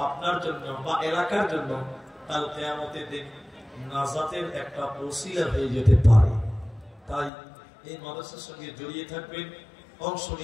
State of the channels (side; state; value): right; drops out; at 7.3 s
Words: আপনার জন্য বা এলাকার জন্য কাল কিয়ামতের দিন নাজাতের একটা ওসিলা হয়ে যেতে পারে। তাই এই মাদ্রাসার সঙ্গে জড়িয়ে থাকবেন, অংশ